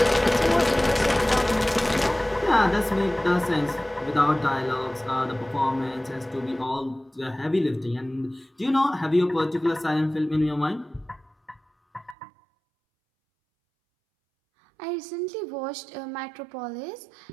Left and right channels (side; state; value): left; drops out; at 12.2 s